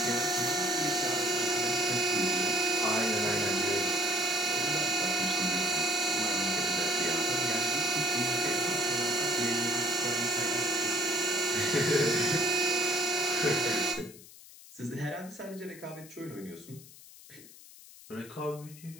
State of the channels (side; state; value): left; noise; hiss, 20 dB below the sound